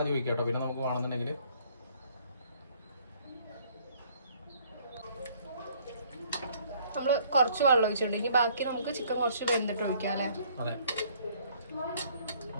ഒഴിക്കാം കേട്ടോ. പിന്നെ നമുക്ക് വേണമെന്നുണ്ടെങ്കിൽ നമ്മൾ കുറച്ച് വെള്ളം ഒഴിച്ചിട്ടുണ്ട്. ഇനി ബാക്കി നമുക്ക് ചിക്കൻ കുറച്ച് വെന്തിട്ട് ഒഴിക്കാം അല്ലേ? അതെ.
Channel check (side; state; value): both; inverted; correlation -0.61